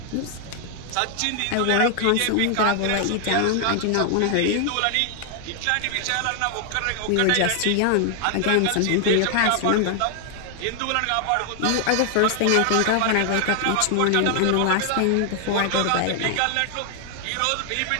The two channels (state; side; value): different; both; correlation 0.00